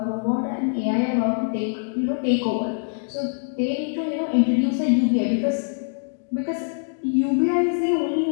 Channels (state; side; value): silent; right; digital silence